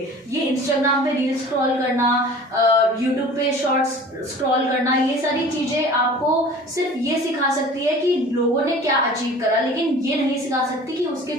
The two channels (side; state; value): both; normal; correlation 0.44